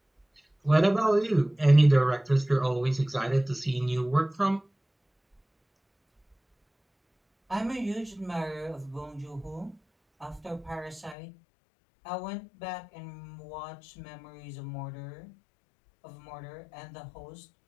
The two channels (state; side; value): drops out; right; at 11.2 s